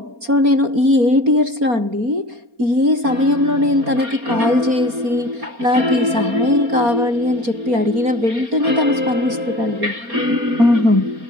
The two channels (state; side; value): late; left; 4.3 ms